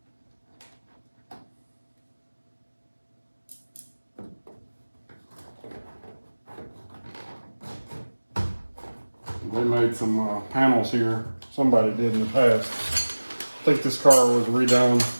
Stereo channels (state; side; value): inverted; both; correlation -1.00